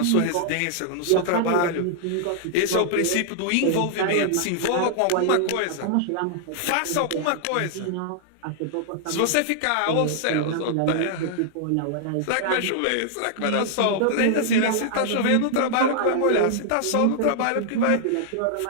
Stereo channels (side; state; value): both; different; correlation -0.01